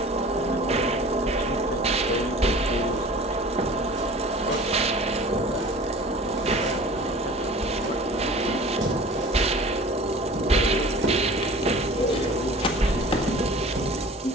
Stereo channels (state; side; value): normal; both; correlation 0.43